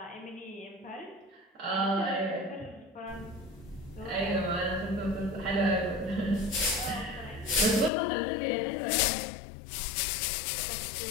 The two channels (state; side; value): drops out; right; at 7.9 s